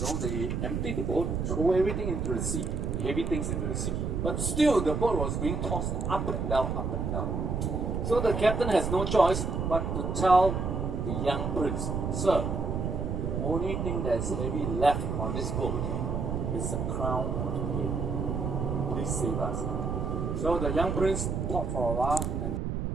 they emptied the boat, throw everything into the sea, the heavy things into the sea. But still, the boat was being tossed up and down, up and down. So the captain has no choice but to tell the young prince, sir, the only thing that's heavy left on this boat is the crown of the head. Please save us. So the young prince thought for a while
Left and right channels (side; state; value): right; noise; rumble, 1 dB below the sound